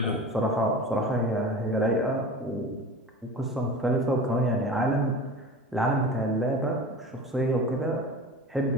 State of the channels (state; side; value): normal; both; correlation 0.34